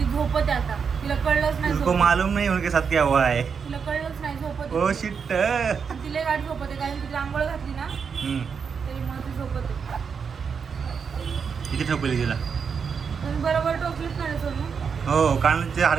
झोपत आहे आता. तिला कळलंच नाही तुमको झोपत. मालूम नाही उनके साथ क्या हुआ है. तिला कळलंच नाही झोपत ओ आहे. शिट. आणि तिला गाठ झोपत आहे कारण तिला आंघोळ घातली ना, त्याच्यामुळे ती झोपत आहे. किती ठोकली तिला. तुम्ही बरोबर टोचलीच नाही सोनू. हो कानाचे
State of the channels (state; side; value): quieter; left; 6.2 dB